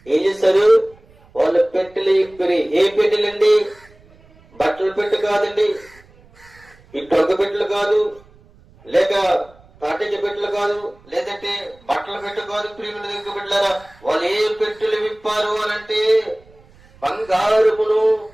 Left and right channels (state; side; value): noise; right; rumble, 27 dB below the sound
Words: ఏం చేశారు? వాళ్ళు పెట్టెలు విప్పిరి. ఏ పెట్టెలండి? బట్టల పెట్టె కాదండి, ఈ టొగ్గ పెట్టెలు కాదు, లేక తాటిక పెట్టెలు కాదు, లేదంటే బట్టల పెట్టె కాదు. ప్రియమైన దగ్గర పెట్టారా, వాళ్ళు ఏ పెట్టెలు విప్పారు అనంటే బంగారమును,